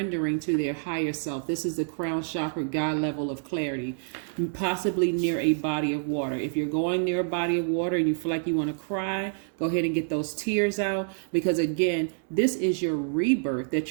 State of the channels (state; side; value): silent; left; digital silence